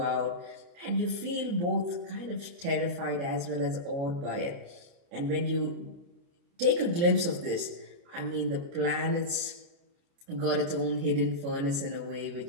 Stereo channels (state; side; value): late; left; 29 ms